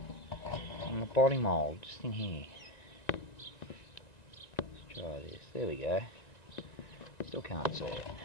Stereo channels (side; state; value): right; late; 1.9 ms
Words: on the body mould, just in here. Let's try this. There we go. Still can't see it.